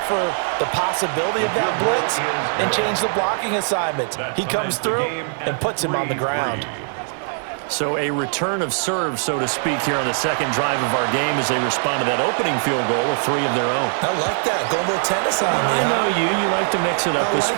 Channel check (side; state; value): left; silent; digital silence